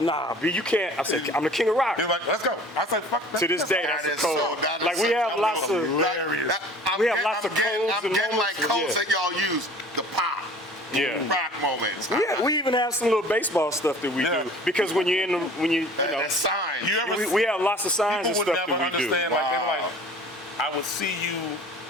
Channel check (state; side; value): normal; both; correlation 0.46